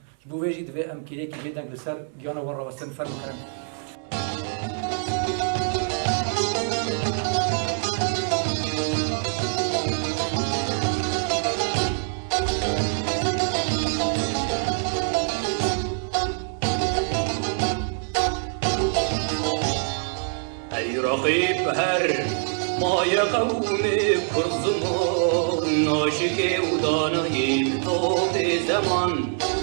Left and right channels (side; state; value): left; silent; 62 dB below the other